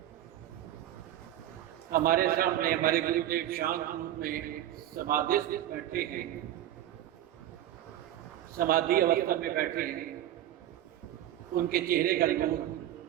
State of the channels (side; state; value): left; quieter; 12.5 dB